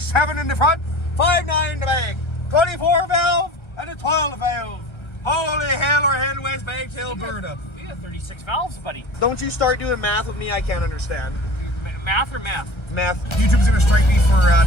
in the front, 5.9 in the back. 24 valve and a 12 valve. Holy hell, we're heading west back to Alberta. We got 36 valves, buddy. Don't you start doing math with me, I can't understand. Math or math? Math. YouTube's gonna strike me for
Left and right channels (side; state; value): right; late; 1.3 ms